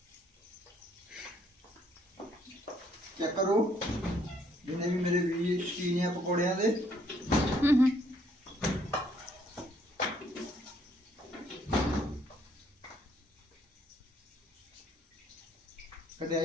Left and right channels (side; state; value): both; normal; correlation 0.67